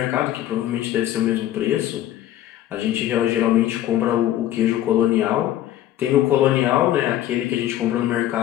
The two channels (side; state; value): right; quieter; 12.9 dB